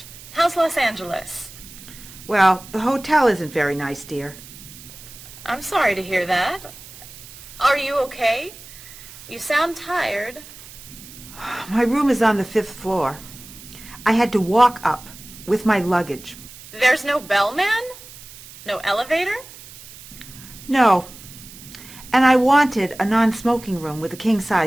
How's Los Angeles? Well, the hotel isn't very nice, dear. I'm sorry to hear that. Are you okay? You sound tired. My room is on the 5th floor. I had to walk up with my luggage. There's no bellman? No elevator? No. And I wanted a non-smoking room with a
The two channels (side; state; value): right; noise; hiss, 17 dB below the sound